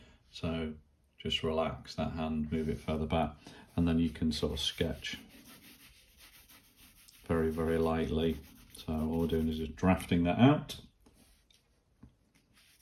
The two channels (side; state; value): both; identical; correlation 1.00